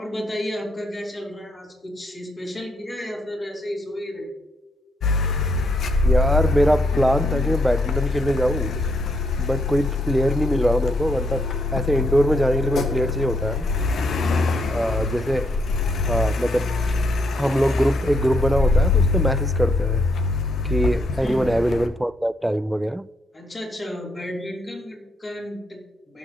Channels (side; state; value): both; normal; correlation 0.75